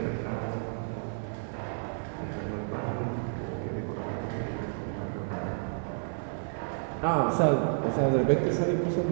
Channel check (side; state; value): left; silent; 57 dB below the other